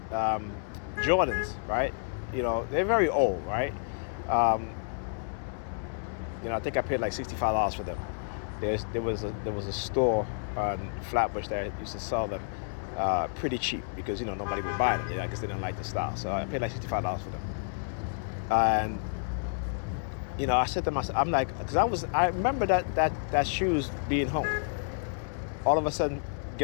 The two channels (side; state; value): right; silent; digital silence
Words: Jordans, right? You know, they're very old, right? I think I paid like $65 for them. There was a store on Flatbush that used to sell them pretty cheap because nobody would buy them. I just didn't like the style, so I paid like $65 for them. And I said to myself, I'm like, because I remember that shoes being home. All of a sudden,